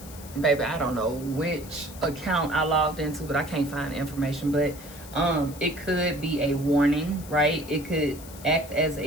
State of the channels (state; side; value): noise; left; hiss, 17 dB below the sound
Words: Baby, I don't know which account I logged into, but I can't find the information. But it could be a warning, right? It could act as